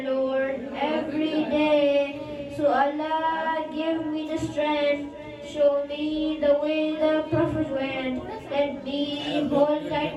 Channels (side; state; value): both; identical; correlation 1.00